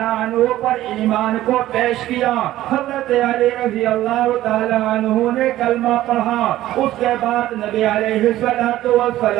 عنہ پر ایمان کو پیش کیا۔ حضرت علی رضی اللہ تعالی عنہ نے کلمہ پڑھا، اس کے بعد نبی علیہ الصلوۃ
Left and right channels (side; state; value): left; quieter; 14.5 dB